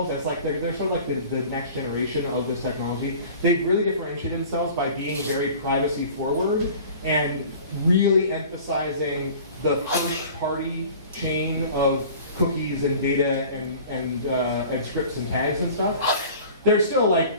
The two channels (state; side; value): inverted; both; correlation -0.44